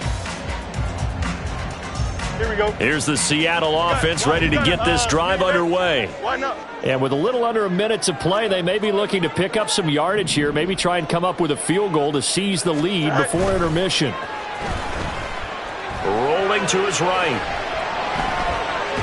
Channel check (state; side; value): identical; both; correlation 1.00